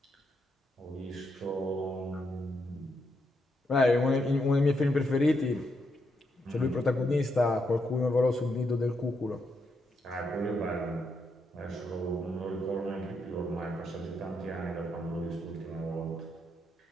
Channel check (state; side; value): normal; both; correlation 0.80